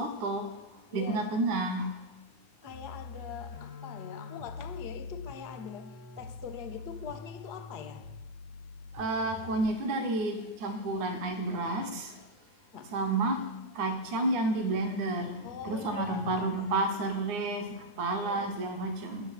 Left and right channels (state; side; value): late; left; 9.6 ms